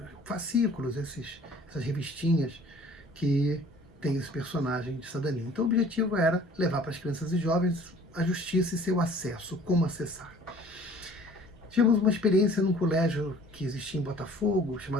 fascículos, essas revistinhas que tem esse personagem de cidadania. Então o objetivo era levar para as crianças e jovens a justiça e seu acesso, como acessar. Tivemos uma experiência num colégio que existia em Botafogo,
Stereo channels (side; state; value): both; normal; correlation 0.51